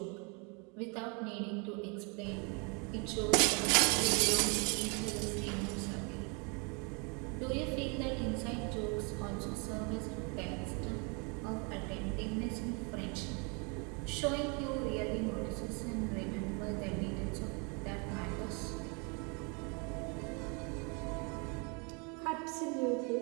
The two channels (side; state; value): left; quieter; 33.2 dB